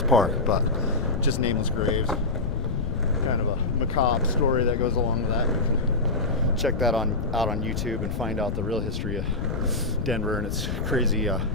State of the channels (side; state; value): left; noise; rumble, 3 dB below the sound